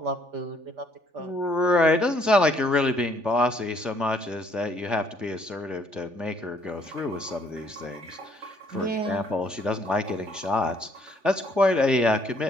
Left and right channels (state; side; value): late; left; 3.4 ms